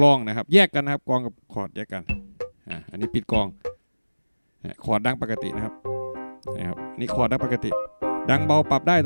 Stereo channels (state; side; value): inverted; both; correlation -1.00